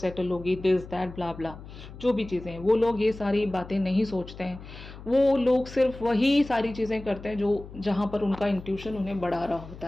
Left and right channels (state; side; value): noise; left; hum, 15 dB below the sound